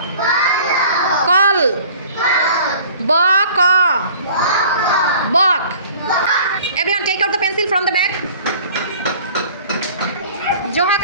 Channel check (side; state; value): both; inverted; correlation -0.48